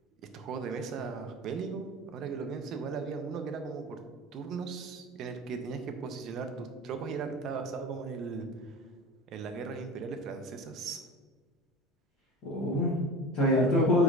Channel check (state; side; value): normal; both; correlation 0.35